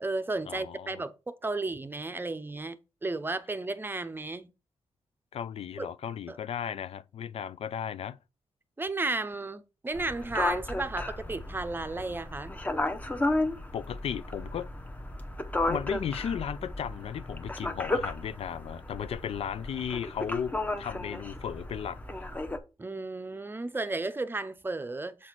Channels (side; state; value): both; normal; correlation 0.65